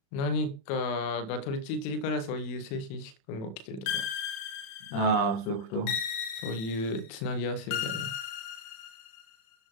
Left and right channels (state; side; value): late; right; 36 ms